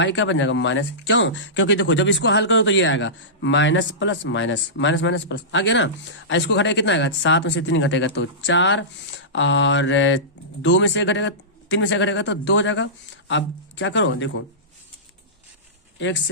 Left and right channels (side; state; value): both; normal; correlation -0.19